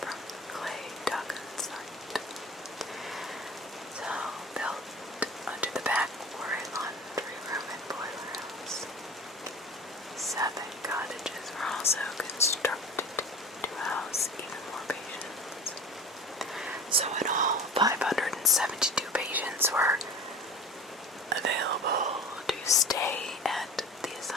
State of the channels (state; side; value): normal; both; correlation 0.37